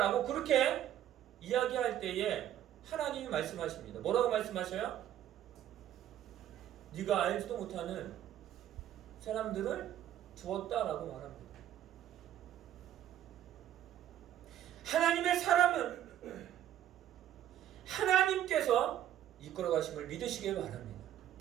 그렇게 이야기할 때에 하나님이 말씀하십니다. 뭐라고 말씀하셔요? 네가 알지도 못하는 사람들을 두었다라고 말합니다. 하나님의 사람은 하나님께서 이끌어 가심을 믿으시길 바랍니다.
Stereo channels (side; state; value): left; quieter; 11.5 dB